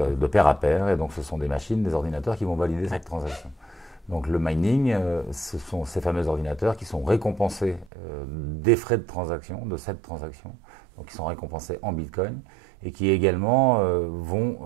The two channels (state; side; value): drops out; left; at 7.9 s